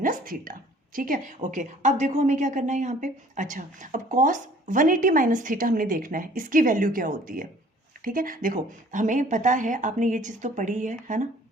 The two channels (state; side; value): normal; both; correlation 0.53